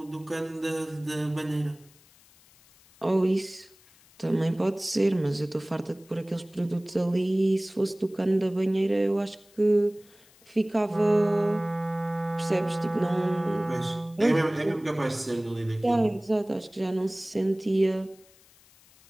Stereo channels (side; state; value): left; noise; hiss, 28 dB below the sound